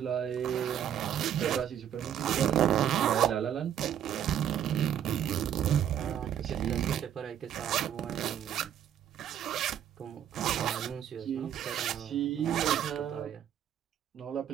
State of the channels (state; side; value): quieter; left; 10.0 dB